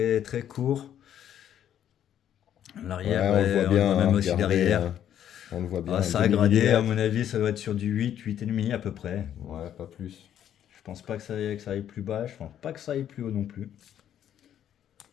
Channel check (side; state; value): right; quieter; 10.3 dB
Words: très court. L'arrière, Ouais, on le voit bien. même aussi regardez, derrière. hein. On le voit bien. Ah, ça a gradé, à mon avis, ça doit être sur du 8, 8,5 à peu près. Ouais, pas plus. Je pense pas que ça aille plus bas, je pense pas que ça aille plus haut non plus.